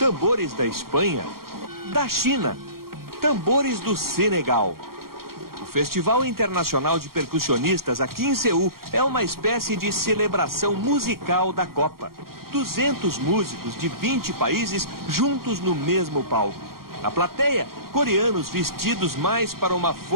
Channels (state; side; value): late; left; 0.93 ms